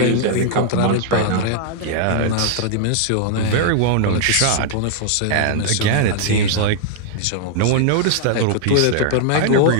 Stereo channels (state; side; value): different; both; correlation -0.01